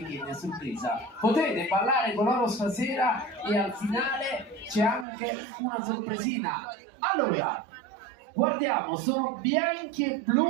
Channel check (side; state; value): left; drops out; at 5.1 s